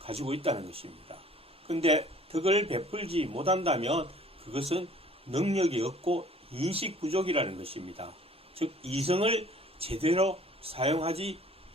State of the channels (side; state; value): both; normal; correlation 0.53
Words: 가지고 있다는 것입니다. 근데 덕을 베풀지 못한다면 그것은 능력이 없고 인식 부족이라는 것입니다. 즉 이성을 제대로 사용하지